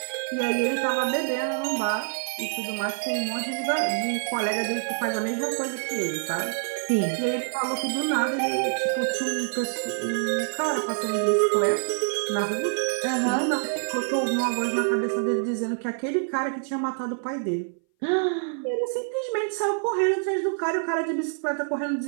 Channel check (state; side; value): silent; left; 59 dB below the other